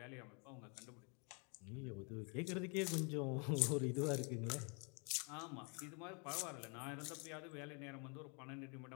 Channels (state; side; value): quieter; right; 35.2 dB